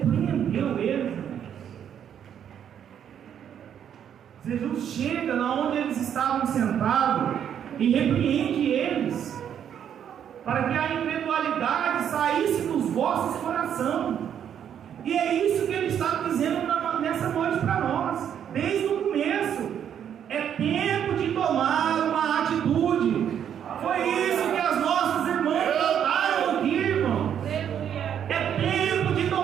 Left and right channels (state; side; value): quieter; left; 9.1 dB